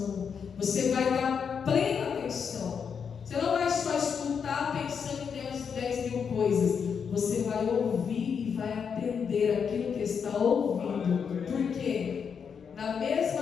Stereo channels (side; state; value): right; quieter; 6.7 dB